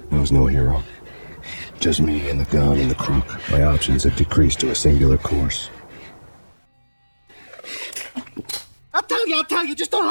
I was no hero. Just me and the gun and the crook. My options had decreased to a singular course. I'll tell you, just don't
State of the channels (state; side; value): inverted; both; correlation -1.00